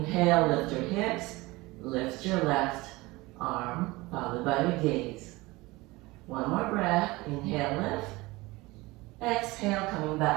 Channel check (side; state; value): left; quieter; 21.6 dB